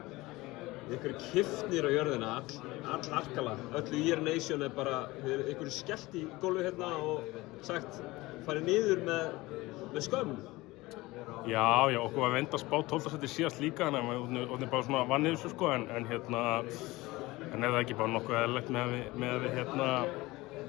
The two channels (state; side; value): quieter; right; 20.4 dB